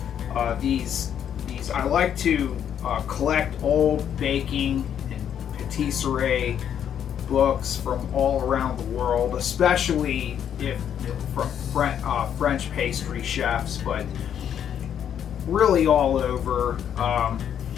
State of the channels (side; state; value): right; quieter; 9.1 dB